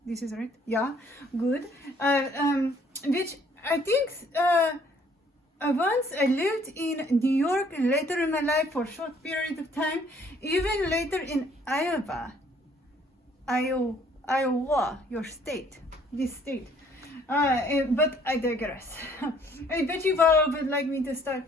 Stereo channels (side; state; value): both; normal; correlation 0.61